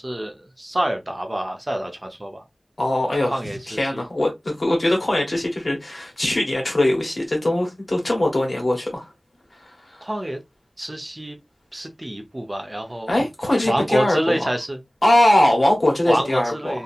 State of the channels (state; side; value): normal; both; correlation 0.97